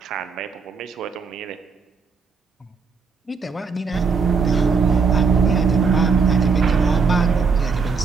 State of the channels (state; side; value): quieter; left; 5.1 dB